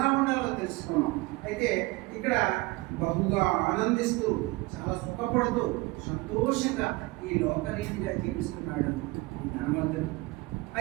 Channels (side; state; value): left; quieter; 22.9 dB